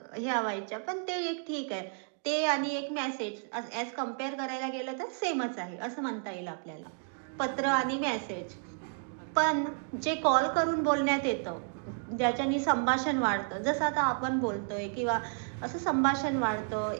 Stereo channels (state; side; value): silent; left; 57 dB below the other